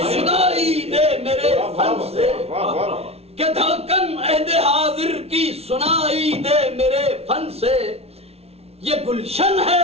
سنائی دے میرے فن سے, کہ دھڑکن عہد حاضر کی سنائی دے میرے فن سے. یہ گلشن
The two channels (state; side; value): late; left; 0.30 ms